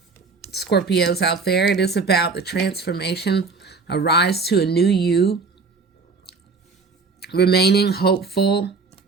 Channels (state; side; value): quieter; left; 4.5 dB